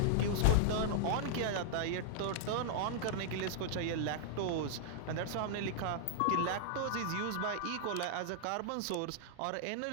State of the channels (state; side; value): different; both; correlation -0.01